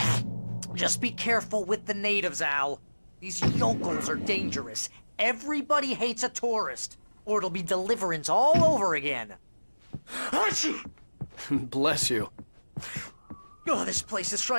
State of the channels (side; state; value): both; inverted; correlation -1.00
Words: Just be careful with the natives, Al. These yokels are dangerous. Everybody hates a tourist, or it'll be Deliverance all over again. Achoo! Bless you. Oh, this place is